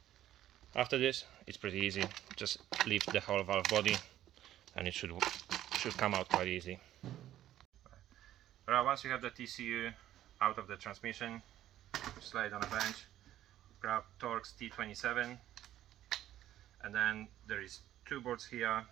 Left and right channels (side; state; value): left; quieter; 12.7 dB